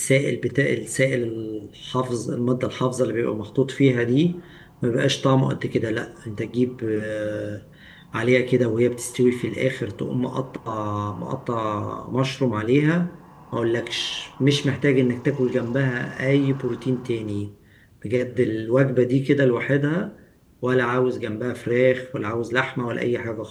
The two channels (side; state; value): both; identical; correlation 1.00